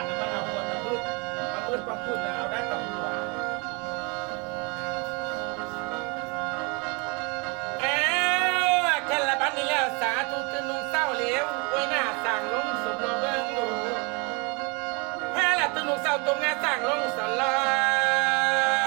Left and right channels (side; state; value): left; quieter; 31.1 dB